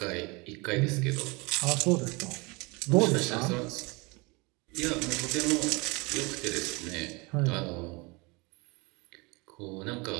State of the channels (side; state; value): left; quieter; 26.9 dB